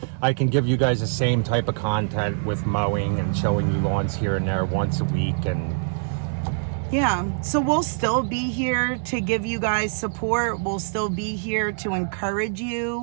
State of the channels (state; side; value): silent; left; digital silence